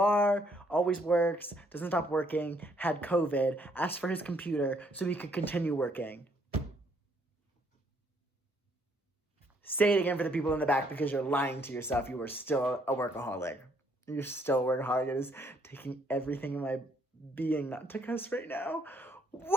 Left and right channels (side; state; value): both; normal; correlation 0.68